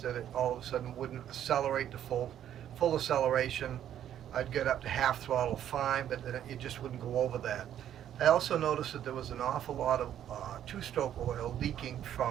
that it all of a sudden wouldn't accelerate to full acceleration. I'd get up to half throttle fine, but then it just wouldn't go over that. I also noticed that there was an awful lot of two-stroke oil leaking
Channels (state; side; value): quieter; left; 10.6 dB